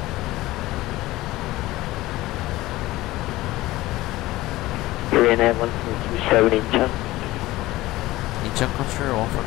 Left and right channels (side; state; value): right; quieter; 17.9 dB